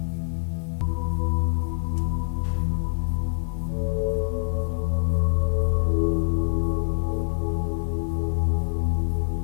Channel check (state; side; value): silent; right; 62 dB below the other